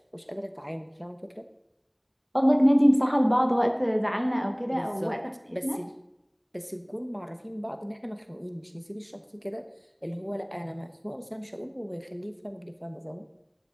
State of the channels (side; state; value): both; identical; correlation 1.00